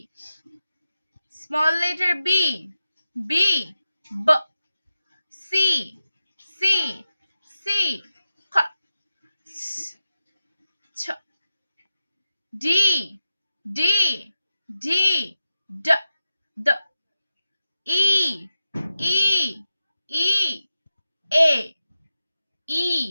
small letter B, B, ব। সি, সি, সি, খ, ছ। ডি, ডি, ডি, ড।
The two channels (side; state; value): both; inverted; correlation -0.90